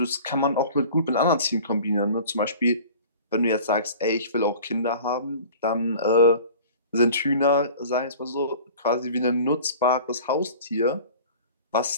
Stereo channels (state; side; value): inverted; both; correlation -0.43